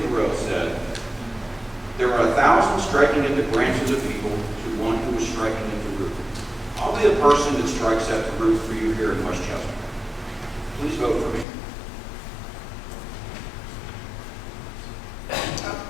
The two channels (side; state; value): right; drops out; at 11.5 s